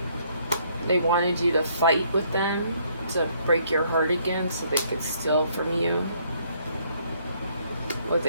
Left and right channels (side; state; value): both; inverted; correlation -0.66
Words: They wanted you to fight with them to break your heart again so they could steal from you with